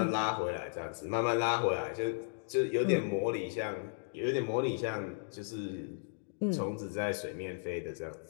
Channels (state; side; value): silent; right; digital silence